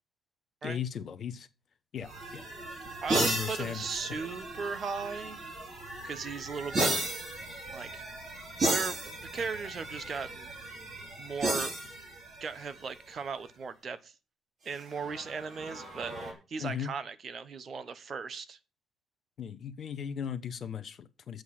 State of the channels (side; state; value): both; normal; correlation 0.71